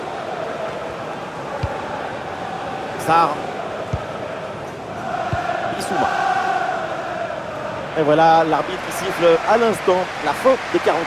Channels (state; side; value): identical; both; correlation 1.00